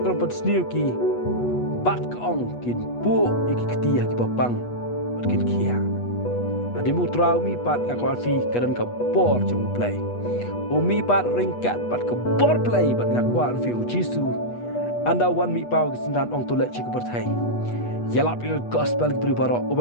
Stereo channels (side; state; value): right; late; 8.3 ms